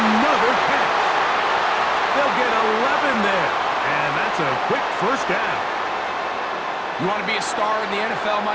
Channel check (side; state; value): both; identical; correlation 1.00